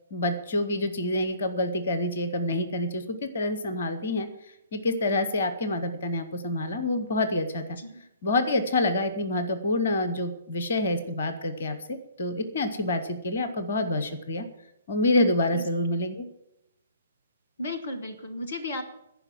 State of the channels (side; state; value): both; inverted; correlation -0.53